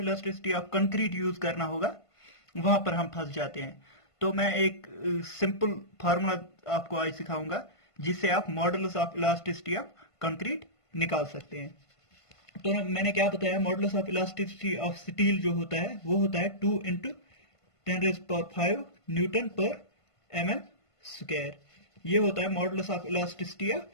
elasticity of concrete use करना होगा, वहां पर हम फंस जाते हैं। तो मैं एक सिंपल फार्मूला आपको आज सिखाऊंगा जिससे आप modulus of elasticity of concrete निकाल सकते हैं। तो मैंने क्या बताया, modulus of elasticity of steel जो होता है वो होता है 2 × 10⁵ न्यूटन पर mm²। ये होता है modulus of elasticity of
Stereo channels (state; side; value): late; right; 1.5 ms